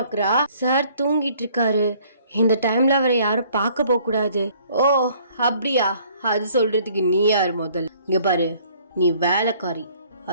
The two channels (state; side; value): inverted; both; correlation -0.59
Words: சார் தூங்கிட்டு இருக்காரு, இந்த டைம்ல அவரை யாரும் பார்க்க போக கூடாது. ஓ அப்படியா, அது சொல்றதுக்கு நீ யார் முதல்ல? இங்க பாரு, நீ வேலைக்காரி,